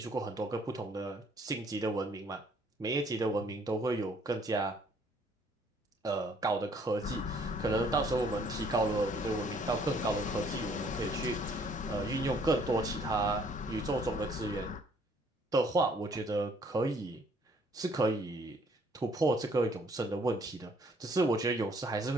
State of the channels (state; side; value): normal; both; correlation 0.62